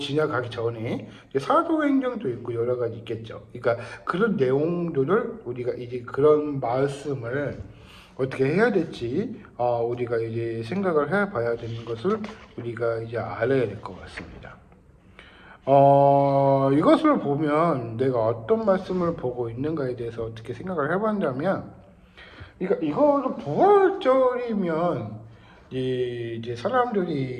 전에 이제 사도행전도 있고 여러 가지 있겠죠. 그러니까 그런 내용들을 우리가 이제 그런 말씀을 어떻게 해야 될지 우리가 이제 생각을 해봐야 되는 것을 우리가 이제 알아야 될 것 같습니다. 이것을 보면 내가 어떤 말씀을 보고 있는가에 대해서 어떻게 생각을 해봤냐면, 그러니까 이거는 부활절이면 이제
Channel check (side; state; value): both; identical; correlation 1.00